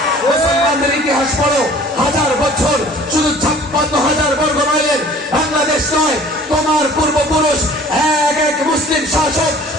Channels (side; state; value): both; normal; correlation 0.50